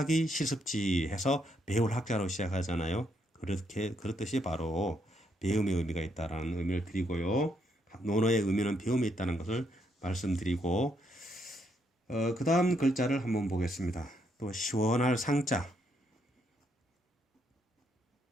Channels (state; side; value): normal; both; correlation 0.75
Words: 실습지 해서 배울 학자로 시작하잖아요. 그렇듯이 바로 배움의 의미가 있다라는 의미를 드리고요. 논어의 의미는 배움이 있다는 것을 말씀드리고 그 다음 글자를 한번 보겠습니다. 또 시원할 상자.